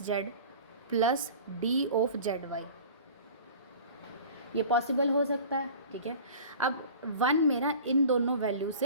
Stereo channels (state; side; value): inverted; both; correlation -0.41